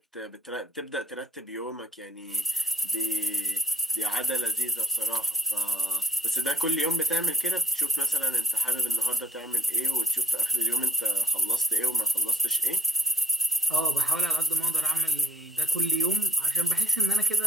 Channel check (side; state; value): both; normal; correlation 0.50